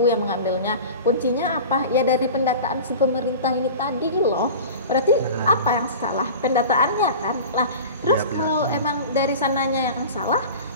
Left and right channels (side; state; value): both; inverted; correlation -0.35